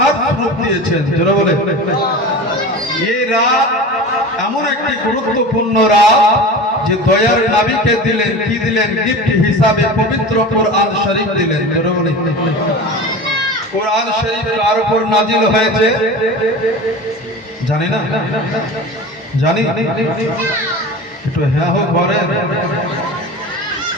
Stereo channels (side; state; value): both; normal; correlation 0.32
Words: স্বরূপ দিয়েছেন। যারা বলে এই রাত এমন একটি গুরুত্বপূর্ণ রাত যে দয়ার নবীকে দিলেন, কি দিলেন? গিফট হিসাবে পবিত্র কোরআন শরীফ দিলেন। যারা বলে কোরআন শরীফ কার উপর নাজিল হয়েছে জানি না? জানি? একটু হ্যাঁ হোক বলেন।